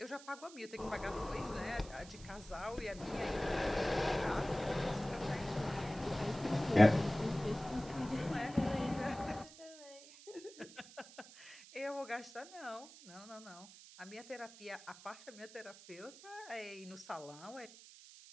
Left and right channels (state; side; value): noise; right; hiss, 18 dB below the sound